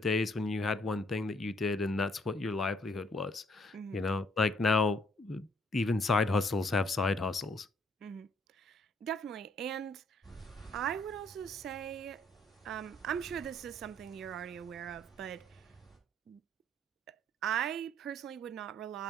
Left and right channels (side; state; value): both; normal; correlation 0.66